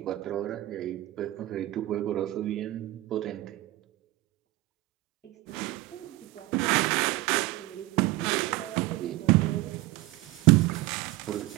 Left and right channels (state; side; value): quieter; left; 18.1 dB